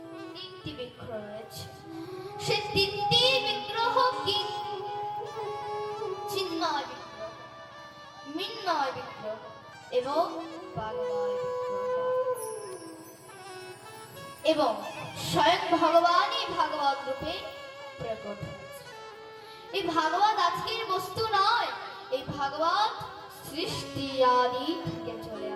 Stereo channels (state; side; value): identical; both; correlation 1.00